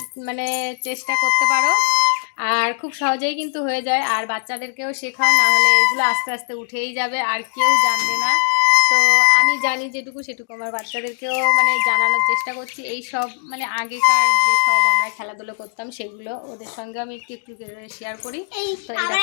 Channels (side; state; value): right; silent; digital silence